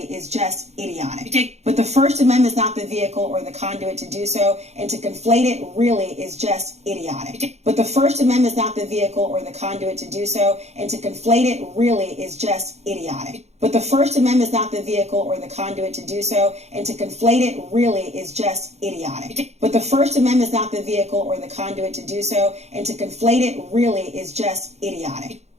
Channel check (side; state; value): left; late; 0.32 ms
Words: is just idiotic. But the First Amendment is not the vehicle or the conduit to do so, and to conflate it really is just idiotic. But the First Amendment is not the vehicle or the conduit to do so, and to conflate it really is just idiotic. But the First Amendment is not the vehicle or the conduit to do so, and to conflate it really is just idiotic. But the First Amendment is not the vehicle or the conduit to do so, and to conflate it really is just idiotic.